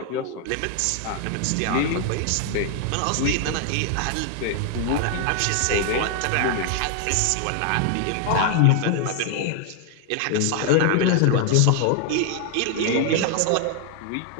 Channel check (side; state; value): both; different; correlation 0.00